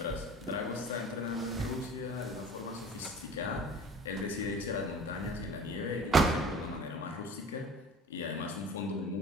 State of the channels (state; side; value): normal; both; correlation 0.42